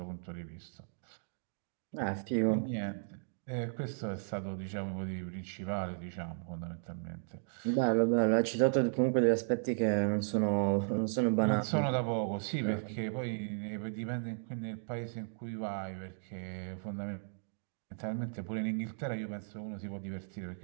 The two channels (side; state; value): left; silent; digital silence